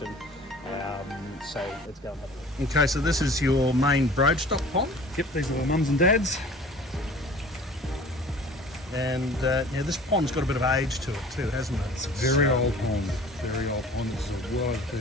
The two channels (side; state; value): both; normal; correlation 0.46